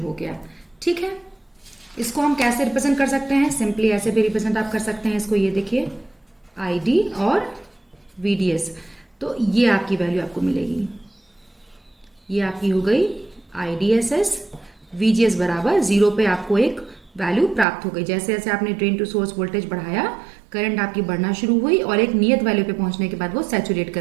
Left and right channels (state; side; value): drops out; left; at 17.7 s